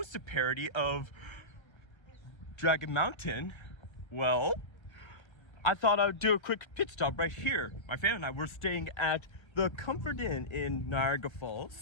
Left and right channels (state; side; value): late; right; 1.3 ms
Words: parody of Dragon Mountain, well, I thought I would do a quick pit stop right here. My family and I were staying at the Comfort Inn in Niagara